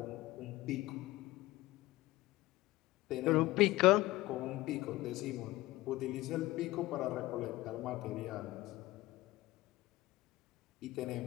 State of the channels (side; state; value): right; quieter; 18.3 dB